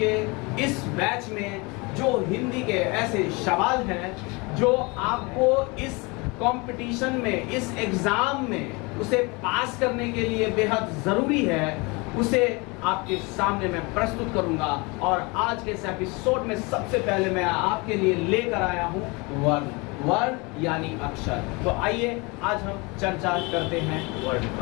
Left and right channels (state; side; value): quieter; right; 27.2 dB